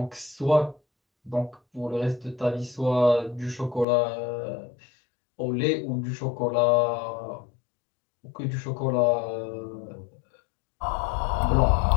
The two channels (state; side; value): drops out; right; at 3.9 s